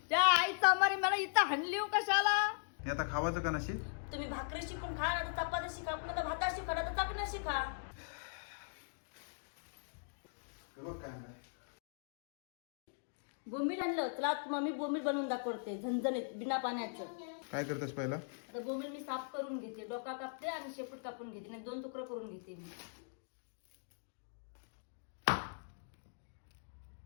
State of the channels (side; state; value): right; silent; digital silence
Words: त्या आईचा मारी मला इथं हाणली कशाला. हे आता खावाचं का नशी. तुम्ही भाकरी शिकून खा ना तर चपाती शिका पुन्हा तर भाता शिका ना तर चपण्या शिका. बोंबील आणलं चला मम्मी बोंबील बनवून दाखवते झणझणीत बिना पाण्याचं. काय करतेस पहिला. आता बोंबील मी साफ करून घेते. डोका कापते आणि शेपूट कापून घेते नाही 2 तुकडे करून घेते मी.